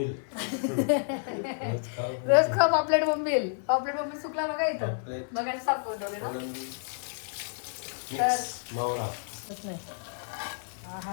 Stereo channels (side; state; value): right; silent; digital silence